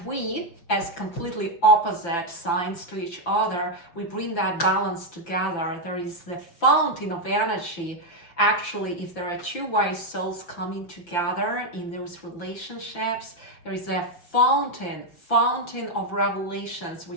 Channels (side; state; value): right; late; 5.9 ms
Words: we, as completely opposite signs to each other, we bring that balance together. There is the fountain of energy. Actually, if there are two wise souls coming together in those relationships, there is a fountain of revelations